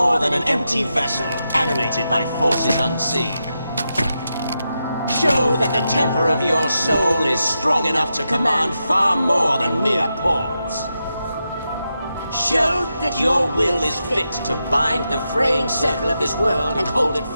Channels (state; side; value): inverted; both; correlation -0.87